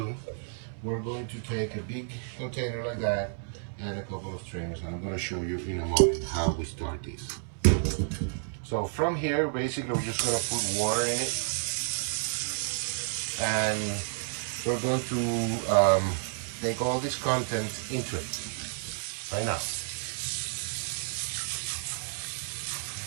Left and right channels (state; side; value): silent; left; digital silence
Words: we're going to take a big container like that and a couple of strings, and I'm going to show you in a moment how we start this. So from here, basically, we're just going to put water in it, and we're going to take all this content into it right now.